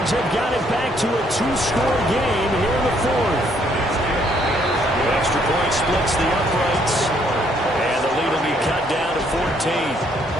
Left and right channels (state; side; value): normal; both; correlation 0.68